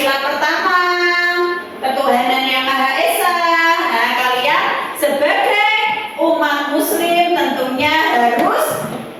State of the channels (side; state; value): both; identical; correlation 1.00